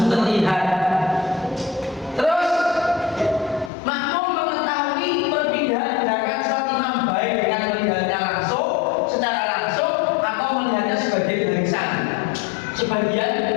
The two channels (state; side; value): drops out; right; at 3.7 s